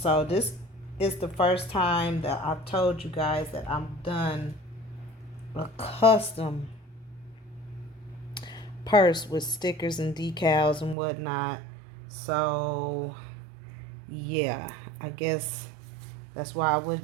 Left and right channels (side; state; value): left; drops out; at 11.0 s